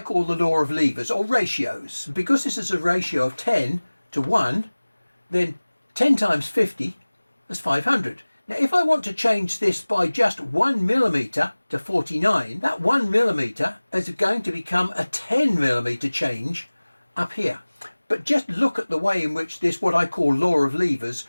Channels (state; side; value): inverted; both; correlation -1.00